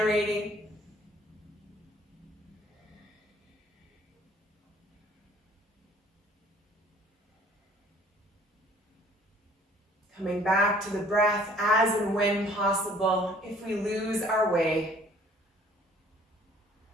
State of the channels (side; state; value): both; normal; correlation 0.56